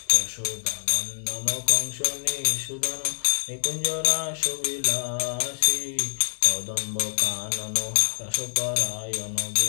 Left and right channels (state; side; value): silent; right; digital silence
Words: यशोदा नंदन कंस निषूदन निकुंज रास विलासी कदम्ब कानन रसपरायण